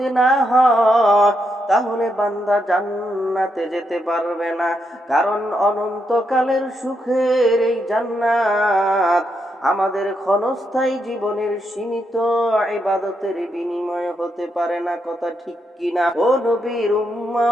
না হয় তাহলে বান্দা জান্নাতে যেতে পারবে না। কারণ অনন্তকালের সুখের এই জান্নাত আমাদের ক্ষণস্থায়ী জীবনের সীমিত ইবাদতের বিনিময়ে হতে পারে না। কথা ঠিক কিনা? ও নবীর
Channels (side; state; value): both; normal; correlation 0.81